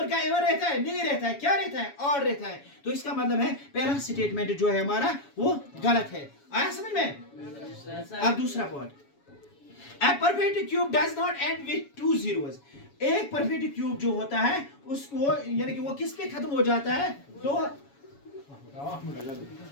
का इवन रहता है? नहीं रहता है। क्या रहता है? ऑड रहता है। तो इसका मतलब है पहला स्टेटमेंट जो है हमारा वो गलत है। आया समझ में? अब दूसरा point, a perfect cube does not and with two zeros. एक परफेक्ट क्यूब जो होता है उसको, यानी कि वो किस पे खत्म हो जाता है? तो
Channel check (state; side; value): late; right; 7.1 ms